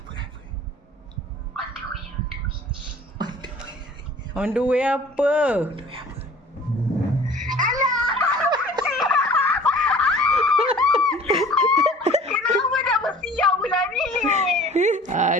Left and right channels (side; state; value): both; normal; correlation 0.47